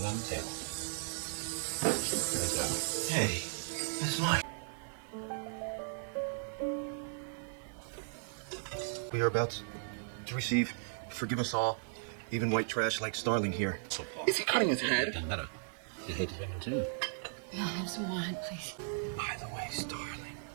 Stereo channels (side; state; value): left; silent; digital silence